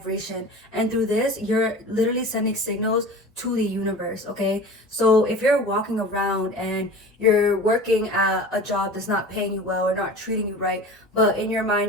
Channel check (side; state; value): both; normal; correlation 0.37